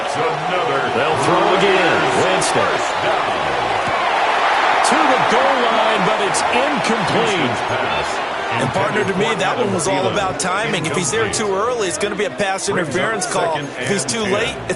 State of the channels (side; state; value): both; identical; correlation 1.00